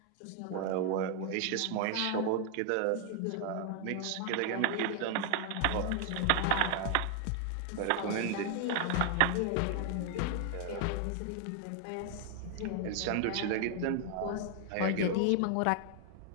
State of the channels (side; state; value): both; different; correlation 0.00